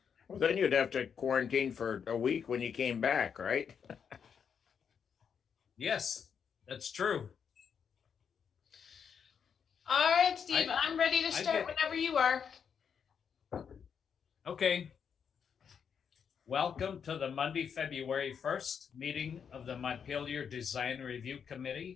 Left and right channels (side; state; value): right; quieter; 7.1 dB